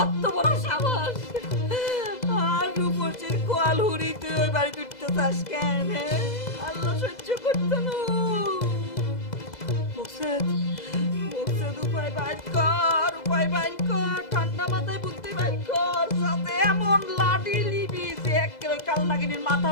বড় সাহস! আর রূপসীর কোয়াল হুড়ি তুই ওই বাড়িতে উঠতে চাস কেন? আল্লাহ সহ্য করতে না। মুকসেদ, মুকসেদ উপায় বাইর কর, উপায় বাইর কর, ঠান্ডা মাথায় বুদ্ধি বাইর কর, যাতে এমন লাঠি লিবি যে একেবারে কাল নাগিনীর মাথা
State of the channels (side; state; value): right; late; 2.0 ms